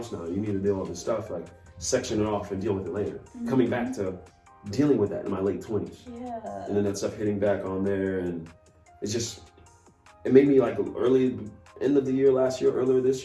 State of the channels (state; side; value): identical; both; correlation 1.00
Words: now. You need to deal with this stuff, like section it off and deal with it later. Coming back to dealing with that in my late 20s. Yeah. And then that stuff hitting back on there, and it made me like end of the year last year, earlier this